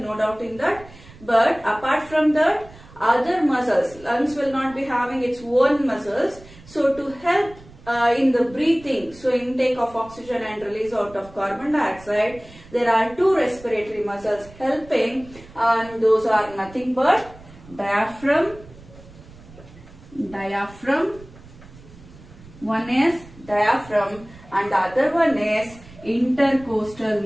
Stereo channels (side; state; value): right; noise; rumble, 21 dB below the sound